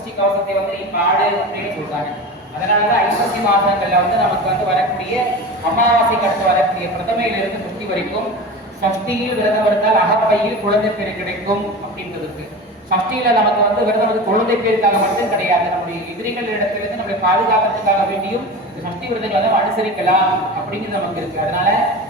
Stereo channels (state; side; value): normal; both; correlation 0.30